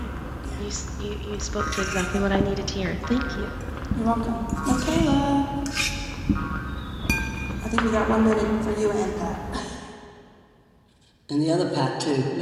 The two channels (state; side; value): identical; both; correlation 1.00